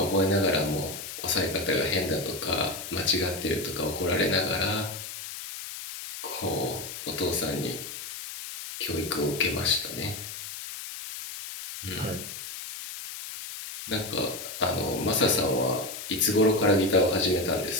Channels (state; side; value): noise; left; hiss, 9 dB below the sound